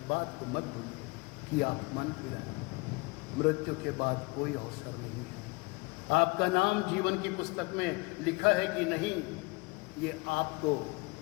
बात को मत भूलिए कि आप मन फिराएं। मृत्यु के बाद कोई अवसर नहीं है। आपका नाम जीवन की पुस्तक में लिखा है कि नहीं, ये आपको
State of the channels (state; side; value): quieter; right; 26.3 dB